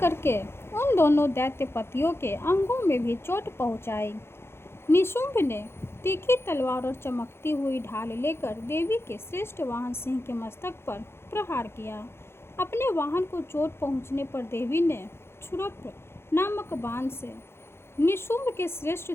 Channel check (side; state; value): right; late; 0.12 ms